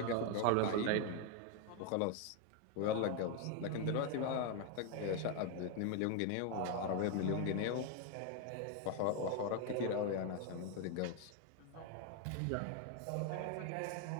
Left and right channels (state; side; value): different; both; correlation 0.01